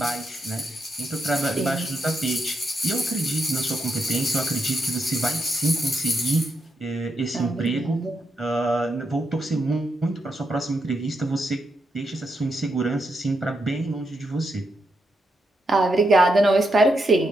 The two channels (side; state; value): both; normal; correlation 0.82